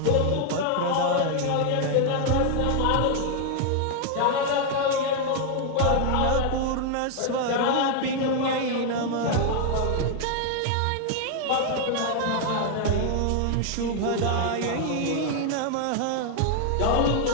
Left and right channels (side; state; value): both; different; correlation 0.00